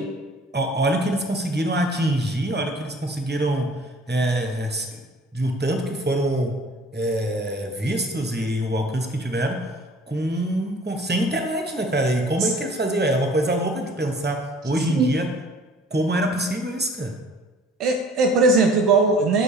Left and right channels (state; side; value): normal; both; correlation 0.50